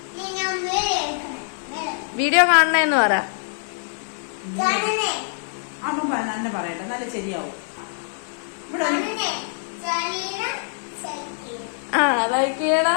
വീഡിയോ കാണണേന്ന് പറ. തന്നെ പറയട്ടെ, നല്ല ശരിയാവും. ലൈക്ക്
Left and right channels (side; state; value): right; silent; 58 dB below the other